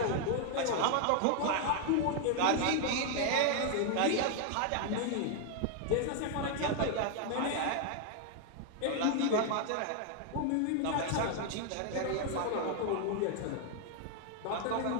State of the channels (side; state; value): both; different; correlation 0.00